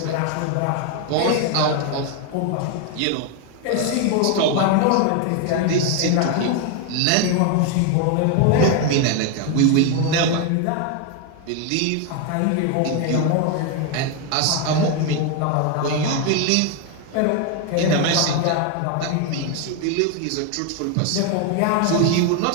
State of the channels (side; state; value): both; different; correlation 0.01